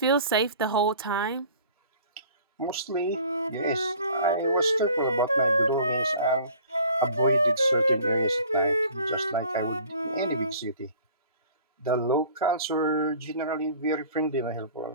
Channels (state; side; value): inverted; both; correlation -0.49